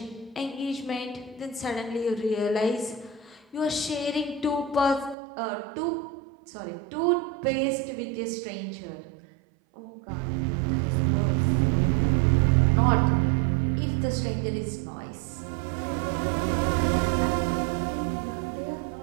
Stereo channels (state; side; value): drops out; left; at 5.2 s